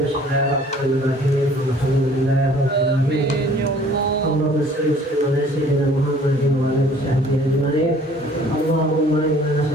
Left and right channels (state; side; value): normal; both; correlation 0.54